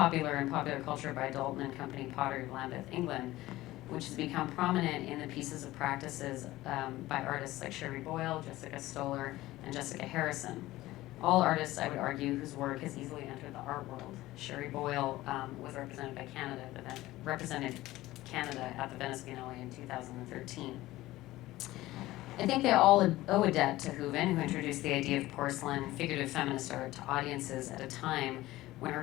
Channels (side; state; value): right; quieter; 17.1 dB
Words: in popular culture by Dalton and Company Pottery of Lambeth, England, which has become prominent in the pieces of practices by artists like Sherry Boyle, Jessica Stoller, and Jessica Harrison. All artists, I would argue, whose work has easily entered the art world. Sherry Boyle was represented by Canada, represented Canada at the Venice Biennale in 2013. I think they all owe a debt to Hooven, who introduced the idea of porcelain figurative feminist art to audiences at a time when her